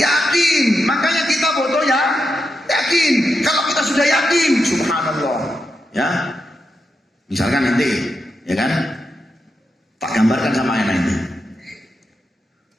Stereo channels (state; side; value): normal; both; correlation 0.86